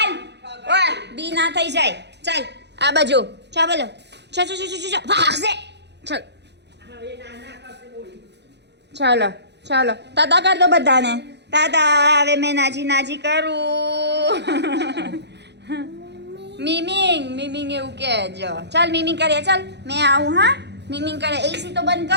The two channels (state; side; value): late; left; 0.50 ms